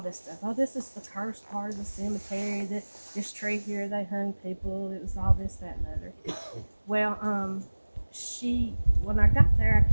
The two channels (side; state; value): both; inverted; correlation -1.00